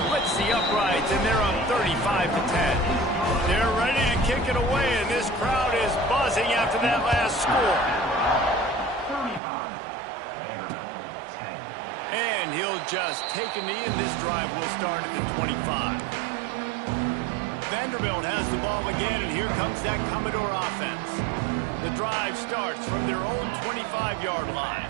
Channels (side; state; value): left; drops out; at 9.4 s